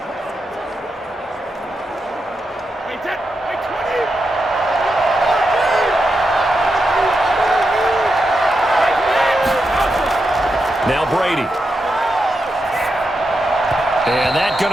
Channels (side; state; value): both; normal; correlation 0.86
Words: Now Brady. And that's